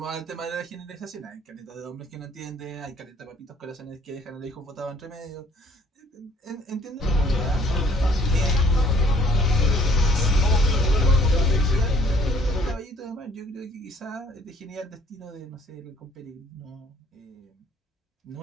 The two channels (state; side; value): normal; both; correlation 0.60